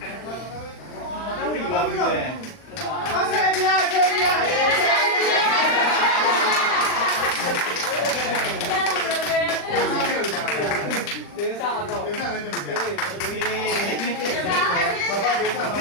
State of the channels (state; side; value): late; right; 40 ms